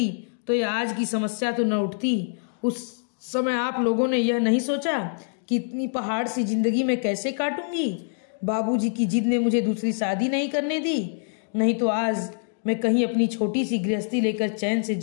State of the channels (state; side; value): silent; right; digital silence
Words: तो ये आज की समस्या तो न उठती। उस समय आप लोगों ने यह नहीं सोचा कि इतनी पहाड़ सी जिंदगी में कैसे काटूंगी। बाबूजी की जिद ने मुझे दूसरी शादी नहीं करने दी, नहीं तो आज मैं कहीं अपनी छोटी सी गृहस्थी लेकर चैन से